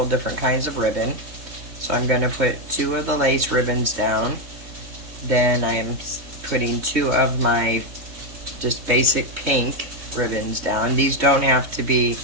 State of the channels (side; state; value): left; late; 3.2 ms